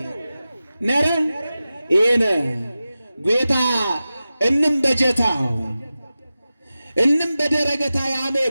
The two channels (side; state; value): both; inverted; correlation -0.94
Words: ነረ ኤነ ጌታ እንም በጀታው እንም በደረገታ ያሜ